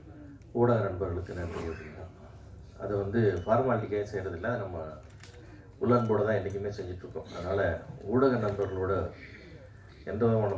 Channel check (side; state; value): both; identical; correlation 1.00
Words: ஊடக நண்பர்களுக்கு நன்றி அப்படின்னா, அது ஃபார்மாலிட்டிக்காக செய்கிறதில்ல, அது நம்ம உள்ளன்போடு தான் என்றைக்குமே செஞ்சிட்ருக்கோம். அதனால் ஊடக நண்பர்களோட எந்த